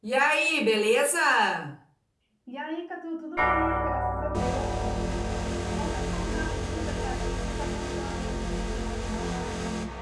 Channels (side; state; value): both; identical; correlation 1.00